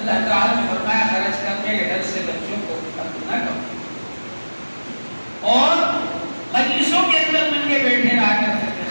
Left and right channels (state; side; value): inverted; both; correlation -1.00